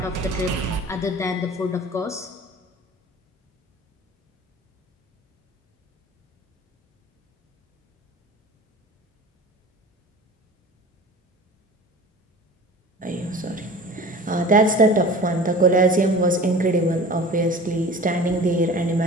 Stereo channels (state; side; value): normal; both; correlation 0.40